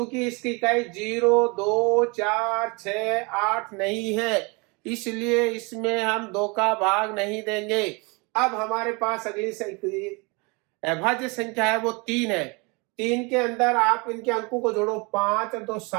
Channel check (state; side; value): quieter; left; 29.2 dB